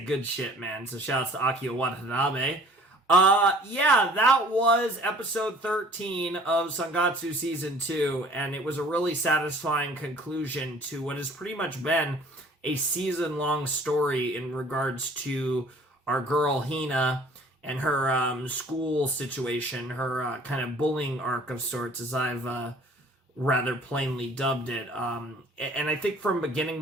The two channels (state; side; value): normal; both; correlation 0.52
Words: Good shit, man. So shouts to Akio Watanabe. Yeah, that was episode 13 of Sangatsu Season 2, and it was a really satisfying conclusion to what has pretty much been a season-long story in regards to our girl Hina and her school situation, her kind of bullying arc of sorts, as I've rather plainly dubbed it. And I think from beginning